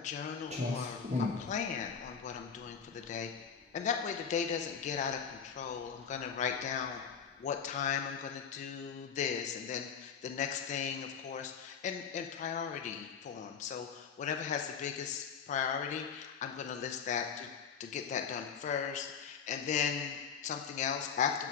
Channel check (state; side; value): quieter; right; 6.8 dB